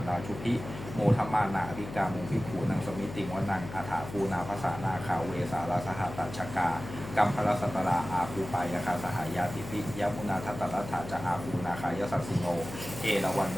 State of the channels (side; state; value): left; noise; hum, 11 dB below the sound